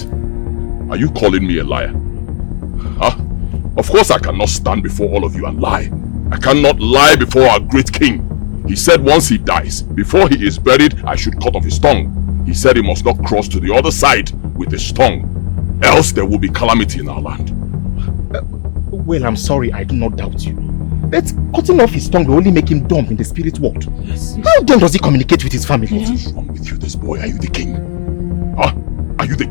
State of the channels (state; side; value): silent; right; digital silence